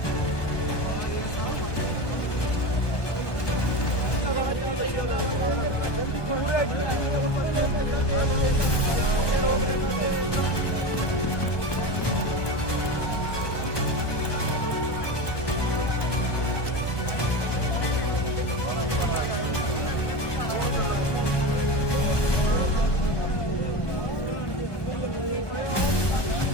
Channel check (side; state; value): right; late; 1.2 ms